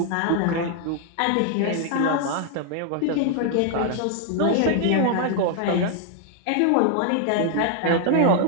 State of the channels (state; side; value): different; both; correlation 0.00